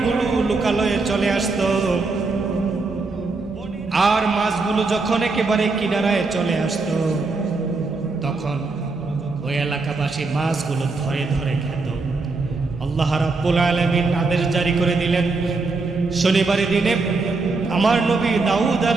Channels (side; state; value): left; quieter; 3.8 dB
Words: লোকালয়ে চলে আসত। আর মাছগুলো যখন একেবারে কিনারায় চলে আসত, তখন ওই এলাকাবাসী মাছগুলো ধরে ধরে খেত। আল্লাহ রাব্বুল আলামিন আদেশ জারি করে দিলেন, শনিবারের দিনে আমার নবী দাউদ